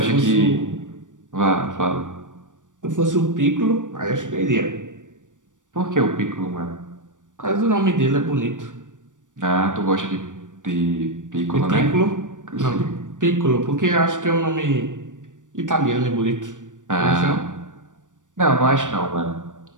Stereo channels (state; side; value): late; left; 0.87 ms